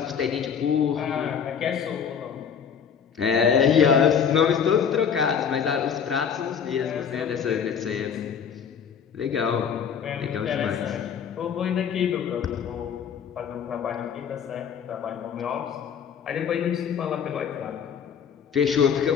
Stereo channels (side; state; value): right; quieter; 7.4 dB